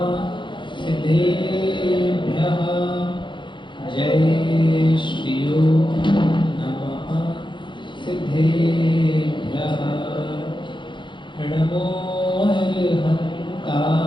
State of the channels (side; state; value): right; late; 0.23 ms